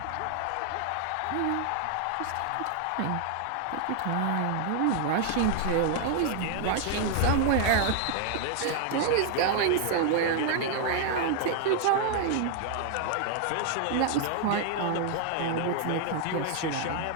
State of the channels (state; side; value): different; both; correlation 0.00